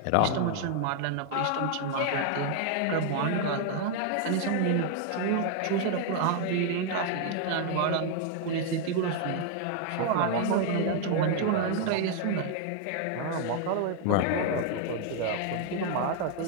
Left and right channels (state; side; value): different; both; correlation 0.00